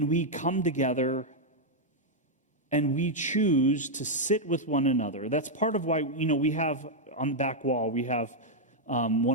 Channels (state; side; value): normal; both; correlation -0.02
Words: come together and we choose to sit with one another. That's part of why, we have on the back wall, we have